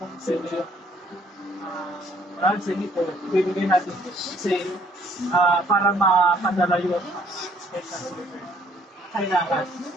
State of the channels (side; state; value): both; normal; correlation 0.62